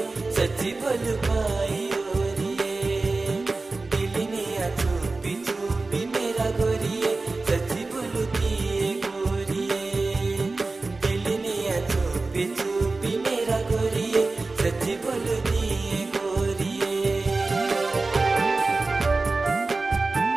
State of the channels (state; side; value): quieter; left; 3.5 dB